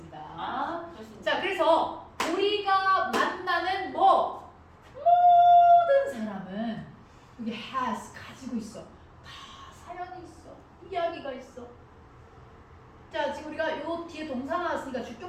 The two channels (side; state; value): both; identical; correlation 1.00